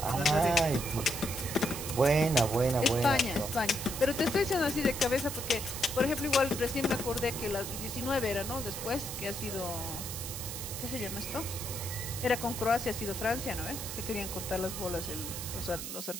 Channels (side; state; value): right; noise; hiss, 7 dB below the sound